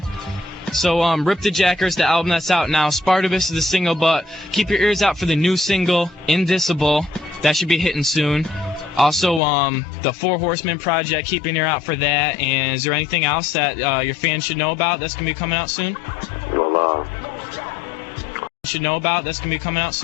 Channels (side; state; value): right; drops out; at 9.4 s